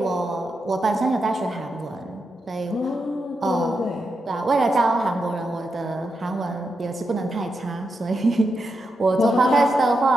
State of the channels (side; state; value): both; normal; correlation 0.86